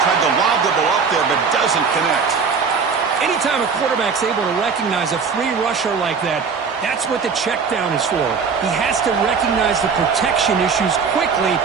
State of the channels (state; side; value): quieter; left; 5.6 dB